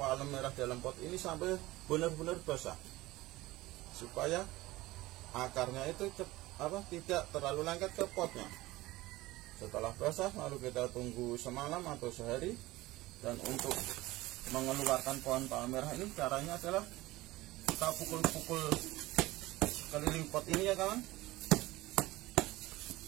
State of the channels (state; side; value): quieter; left; 18.8 dB